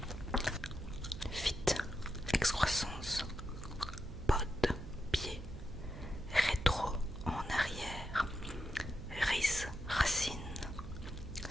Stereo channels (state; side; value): noise; right; hum, 11 dB below the sound